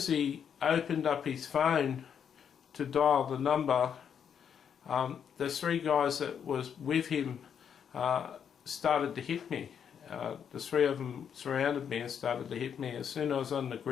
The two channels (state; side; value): quieter; right; 7.9 dB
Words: he opened up his phone to dial the number, the 3 guys that was with him started to hit me. The 3 of them surrounded me and started to hit me as soon as I was on the